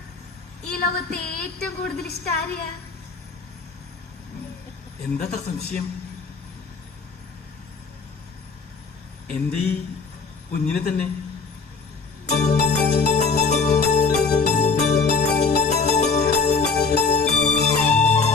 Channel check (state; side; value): quieter; right; 4.7 dB